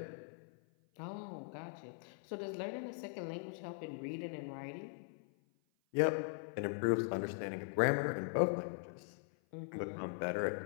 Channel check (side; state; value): right; silent; 51 dB below the other